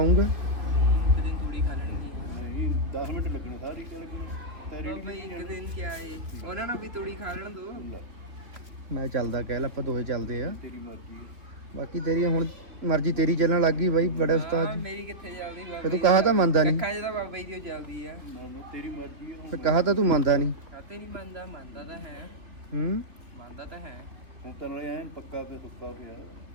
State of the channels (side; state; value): left; late; 3.2 ms